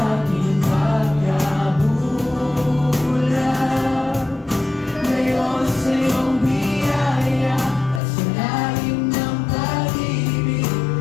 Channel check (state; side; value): drops out; right; at 8.0 s